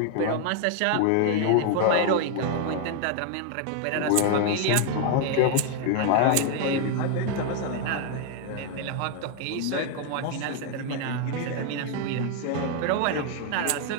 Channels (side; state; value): both; different; correlation 0.00